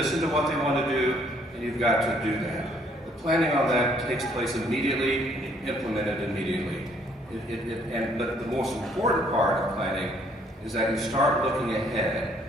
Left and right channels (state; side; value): normal; both; correlation 0.64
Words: to what they want to do, and you've got to do that. The planning on that takes place immediately, and you implement it immediately. But the most important part of planning is that you start looking